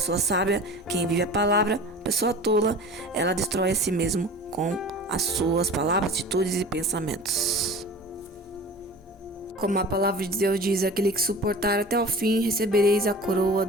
sábia, quem vive a palavra, a pessoa tola, ela destrói a si mesmo com as suas palavras, atitudes e pensamentos. Como a palavra de Deus diz, aquele que suportar até o fim, recebereis a coroa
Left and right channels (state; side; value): normal; both; correlation 0.39